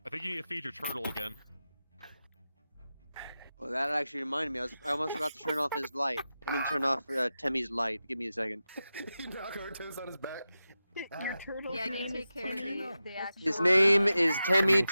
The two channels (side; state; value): both; inverted; correlation -0.92